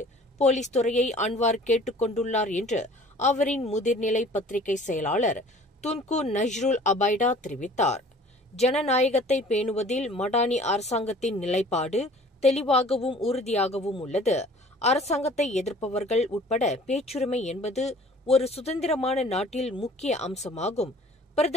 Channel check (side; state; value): both; normal; correlation 0.49